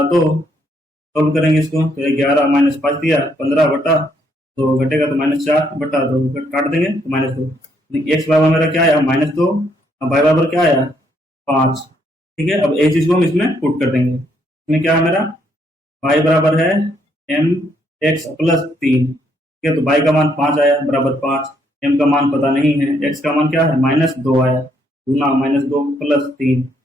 2, सॉल्व करेंगे इसको तो 11 माइनस 5 दिया 15 बटा तो घटेगा तो -4 बटा 2 काट देंगे तो -2। एक्स बराबर मेरा क्या आया -2 और वाई बराबर क्या आया 5। ठीक है, अब एक चीज को हम इसमें पुट कर देंगे। इसमें क्या है मेरा y बराबर है एम एक्स प्लस 3। ठीक है, तो y का मान 5 आया बराबर 5, m का मान पता नहीं है, x का मान क्या है -2 आया गुना -2 प्लस 3।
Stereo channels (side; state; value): both; normal; correlation 0.72